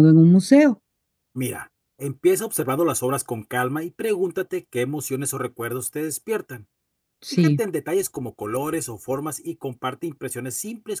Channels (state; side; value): identical; both; correlation 1.00